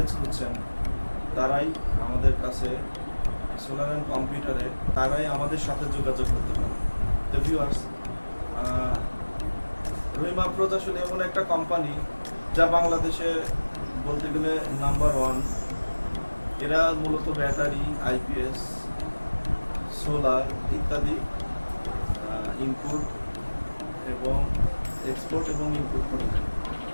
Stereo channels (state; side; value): inverted; both; correlation -1.00